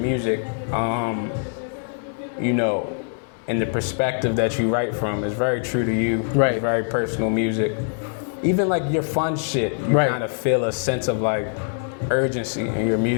And the perspective that you write from is very true to you. Right. It's very personal music. Even like your fun shit, you kind of feel a sense of like urgency in your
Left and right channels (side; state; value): right; silent; digital silence